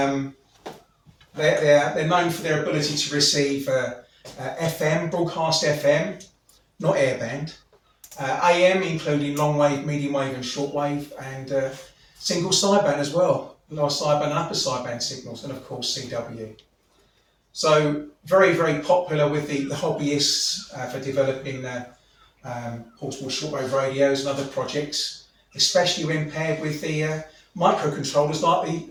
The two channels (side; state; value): both; identical; correlation 1.00